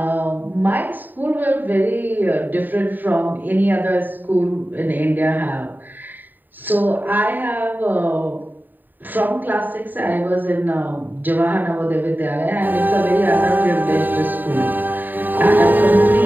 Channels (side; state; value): left; late; 0.089 ms